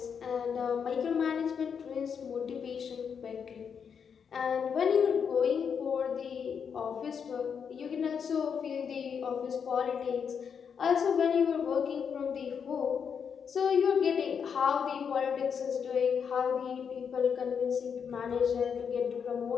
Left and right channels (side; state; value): right; quieter; 6.9 dB